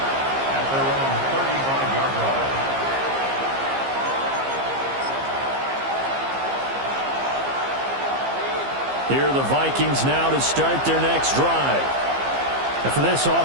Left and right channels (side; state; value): left; late; 15 ms